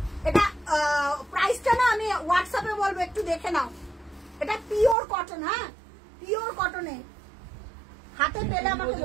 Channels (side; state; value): left; drops out; at 5.0 s